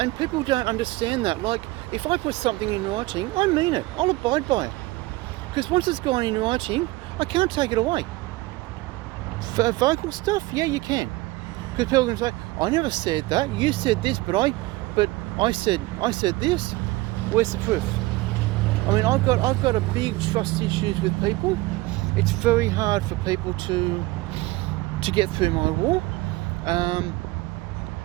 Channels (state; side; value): quieter; left; 20.5 dB